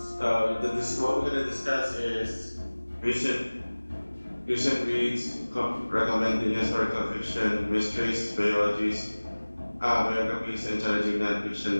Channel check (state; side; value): inverted; both; correlation -1.00